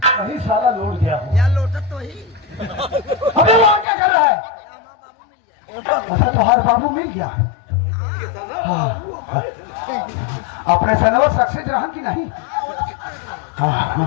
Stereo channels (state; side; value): drops out; right; at 3.9 s